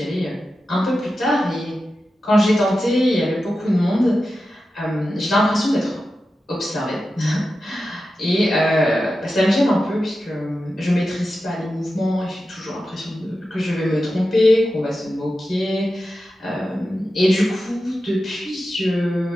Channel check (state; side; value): normal; both; correlation 0.92